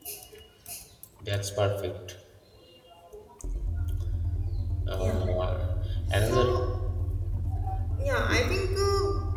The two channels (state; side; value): identical; both; correlation 1.00